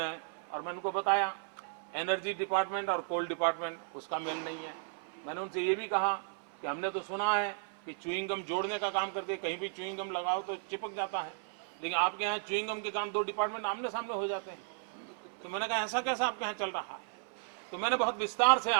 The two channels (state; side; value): silent; left; 55 dB below the other